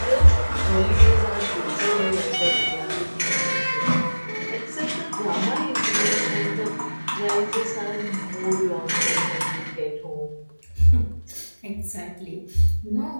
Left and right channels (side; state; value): both; inverted; correlation -1.00